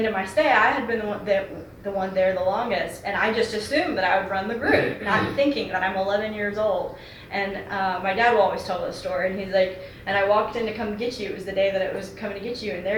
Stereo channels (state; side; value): identical; both; correlation 1.00